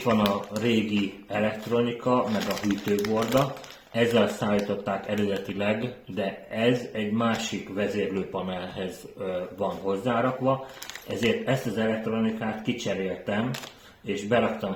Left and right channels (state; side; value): identical; both; correlation 1.00